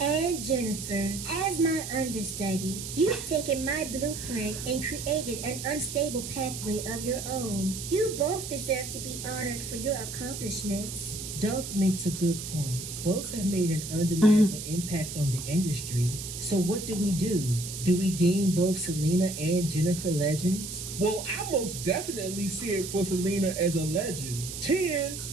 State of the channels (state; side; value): noise; right; hiss, 8 dB below the sound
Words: And Jennifer, as my understudy, you've taken my blueprint and created an unstable pathway of your own. You both deserve to be honored for your accomplishments. Doug makes a good point. Both have made an undeniable impact on the industry. So what do? Do we deem both Selena and Jennifer legends? Well, I most definitely see it for Selena as a legend.